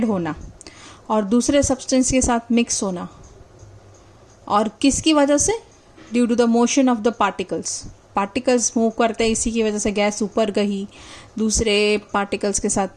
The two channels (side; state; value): both; identical; correlation 1.00